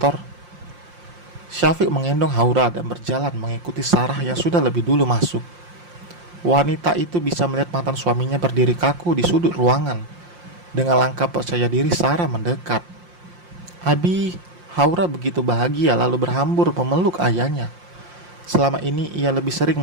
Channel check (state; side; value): late; left; 5.7 ms